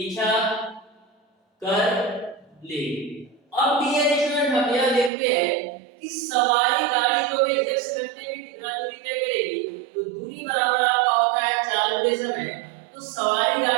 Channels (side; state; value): left; drops out; at 5.1 s